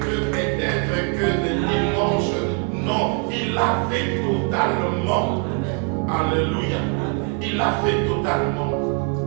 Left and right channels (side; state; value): left; quieter; 38.0 dB